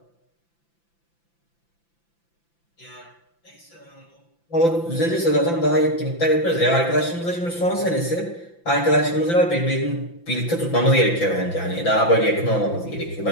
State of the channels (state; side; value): late; right; 5.9 ms